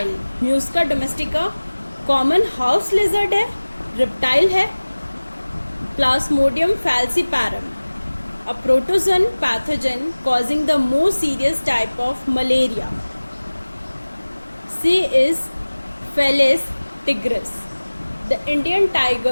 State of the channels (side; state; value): both; inverted; correlation -1.00